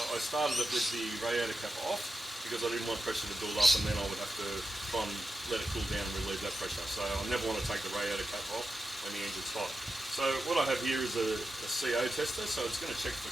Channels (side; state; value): both; normal; correlation 0.90